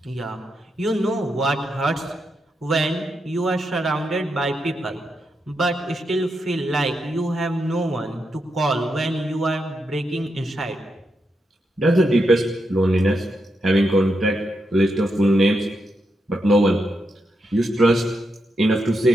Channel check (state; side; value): normal; both; correlation 0.84